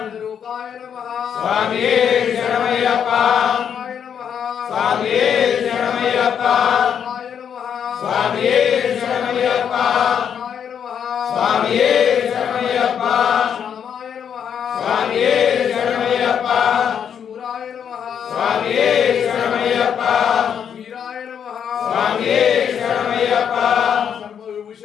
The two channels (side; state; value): right; quieter; 8.1 dB